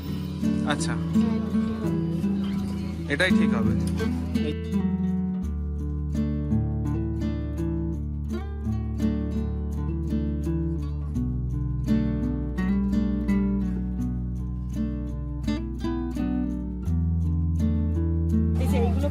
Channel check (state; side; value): identical; both; correlation 1.00